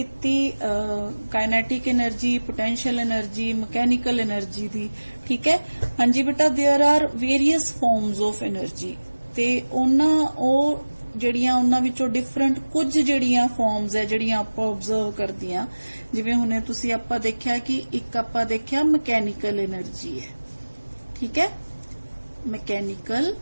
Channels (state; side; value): inverted; both; correlation -1.00